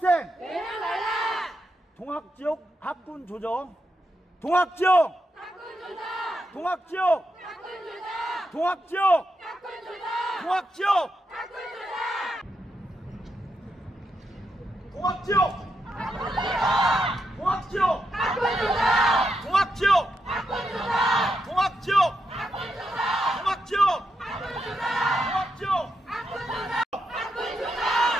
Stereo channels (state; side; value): normal; both; correlation 0.83